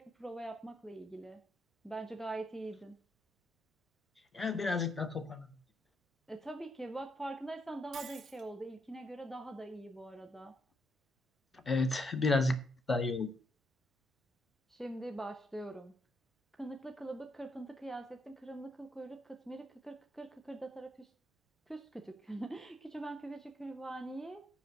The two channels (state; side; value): normal; both; correlation 0.77